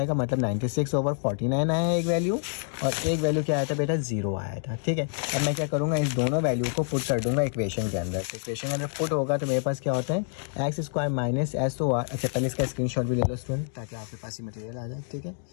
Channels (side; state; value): right; silent; digital silence